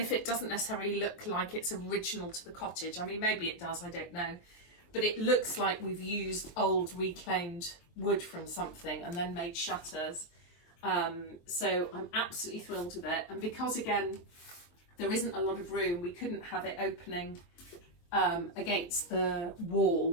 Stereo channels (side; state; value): right; late; 23 ms